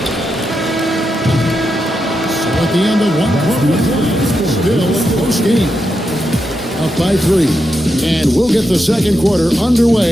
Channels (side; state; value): both; normal; correlation 0.85